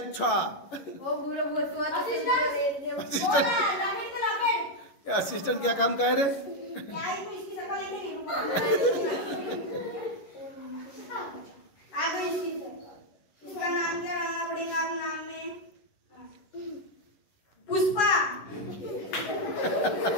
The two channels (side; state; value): right; late; 11 ms